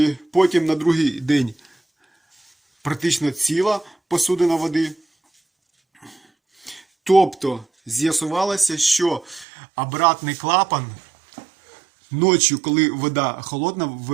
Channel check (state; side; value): drops out; left; at 9.5 s